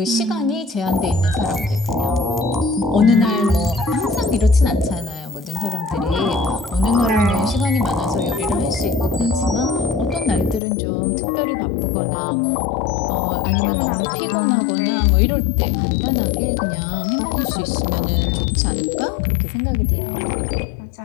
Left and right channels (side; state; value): right; drops out; at 10.6 s